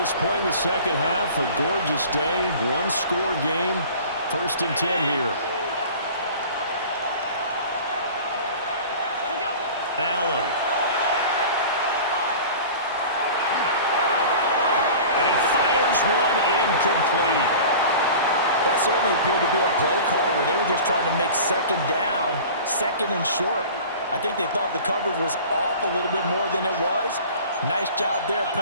point in the second half. A gorgeous day, one-score game. 1st and 10 here. Allen. And he fires one incomplete. That certainly appeared to be a play call where they were just trying to make second down, second and short. I think they thought the coverage was off a little bit more than it was. Nice job there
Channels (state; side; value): inverted; both; correlation -0.40